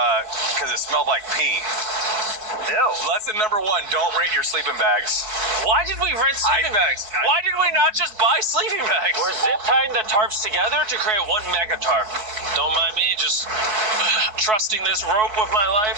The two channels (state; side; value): late; left; 4.5 ms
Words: Because it smelled like pee. Ew. Lesson number 1, don't rent your sleeping bags. Why did we rent sleeping bags? Why did we not just buy sleeping bags? We're zip tying the tarps together to create one mega tarp. Don't mind me just trusting this rope with my life.